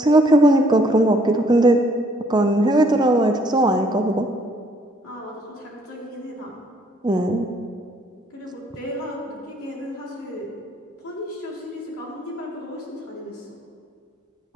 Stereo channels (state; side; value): normal; both; correlation 0.64